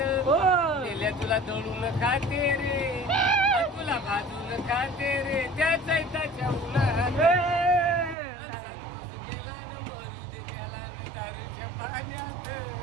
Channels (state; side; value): drops out; left; at 8.2 s